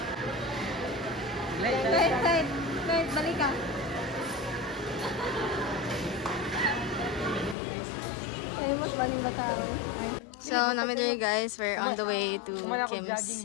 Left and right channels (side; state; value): right; drops out; at 7.6 s